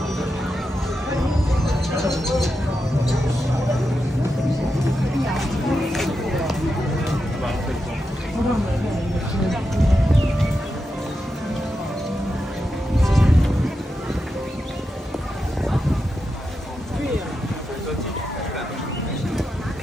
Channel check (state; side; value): normal; both; correlation 0.88